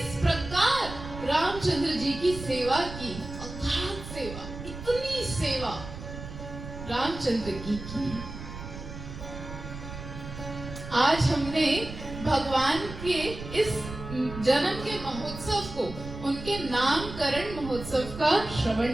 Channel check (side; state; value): right; noise; rumble, 11 dB below the sound